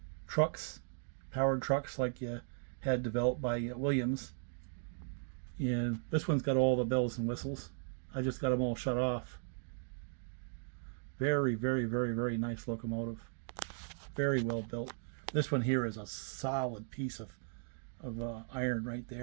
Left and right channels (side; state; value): left; silent; digital silence